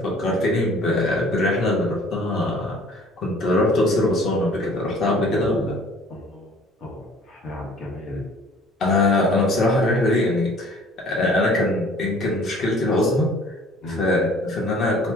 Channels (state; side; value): normal; both; correlation 0.52